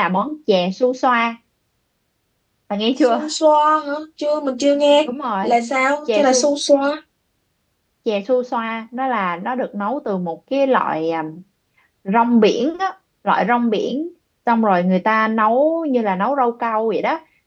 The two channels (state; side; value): identical; both; correlation 1.00